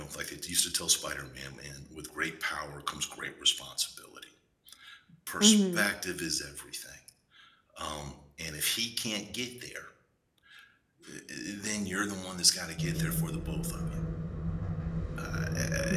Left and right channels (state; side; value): identical; both; correlation 1.00